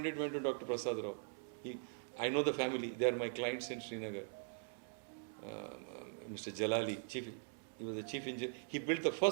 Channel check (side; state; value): left; silent; digital silence